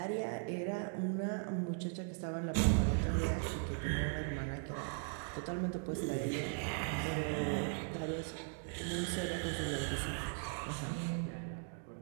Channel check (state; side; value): silent; left; 52 dB below the other